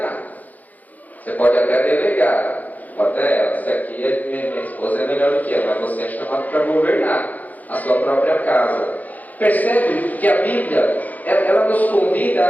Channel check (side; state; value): right; late; 0.080 ms